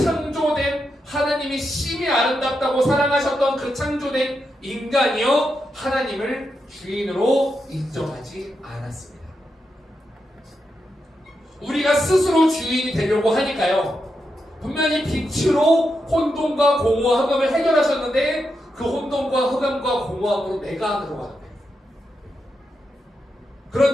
하나님이 심히 아름답다고 사랑하셨던 그 창조된 인간이요 하나님을 주인으로 인정하지 않았습니다. 우리가 스스로 주인이 되려고 하니까요. 분명히 빛으로 혼돈과 공허와 흑암을 해결하셨는데 그 혼돈과 흑암과 공허함으로 내가 안으로 가는 거예요.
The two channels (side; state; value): both; normal; correlation 0.85